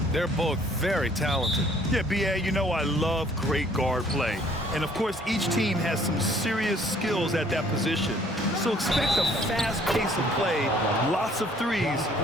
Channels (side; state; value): both; normal; correlation 0.59